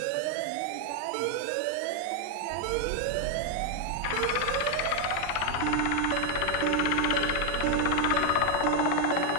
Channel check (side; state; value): both; different; correlation 0.01